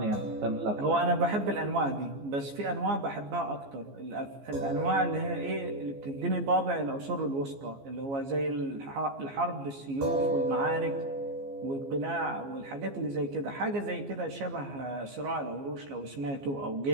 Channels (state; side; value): late; left; 15 ms